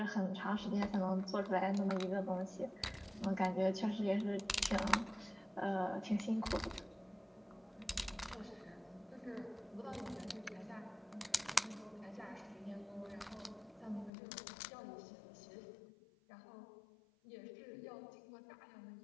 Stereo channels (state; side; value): drops out; right; at 14.1 s